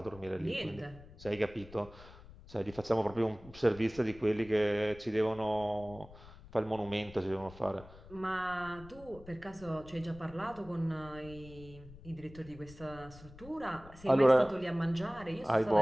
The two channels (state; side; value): noise; left; rumble, 19 dB below the sound